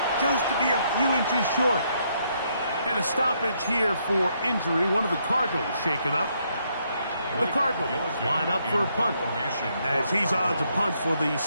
just to be a few inches short. And a stoppage here for injury. One of the Cardinals shaken up. The Cardinals line up for a punt, as he's on to punt for the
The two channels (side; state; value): both; inverted; correlation -0.74